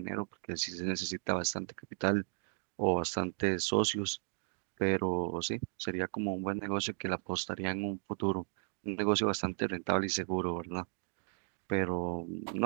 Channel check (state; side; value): silent; left; 54 dB below the other